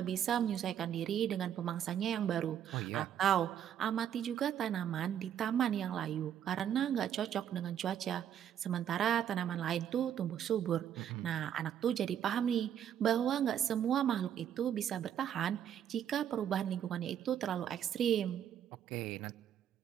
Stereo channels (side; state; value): left; quieter; 9.7 dB